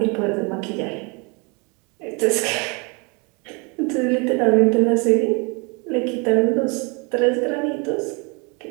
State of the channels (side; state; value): left; quieter; 31.1 dB